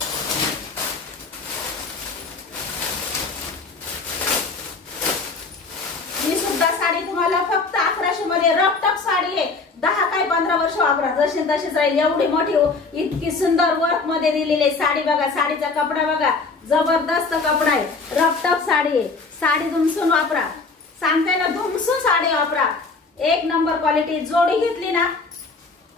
ही सुद्धा साडी तुम्हाला फक्त 1100 मध्ये रपटप साडी आहे. 10 काय 15 वर्ष वापरा, जशी तशीच राहील. एवढी मोठी इतकी सुंदर वर्क मध्ये दिलेली आहे. साडी बघा, साडीचा कपडा बघा, जबरदस्त कपडा आहे. रपटप साडी आहे. साडी धुमसून वापरा, सांगते ना, धुमसून साडी वापरा. 1 नंबर क्वालिटी. जोडी घेतली ना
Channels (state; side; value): quieter; right; 4.1 dB